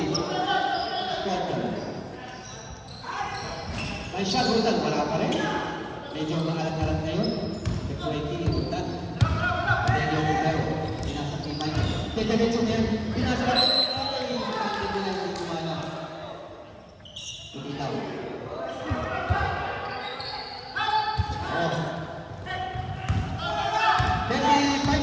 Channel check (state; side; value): identical; both; correlation 1.00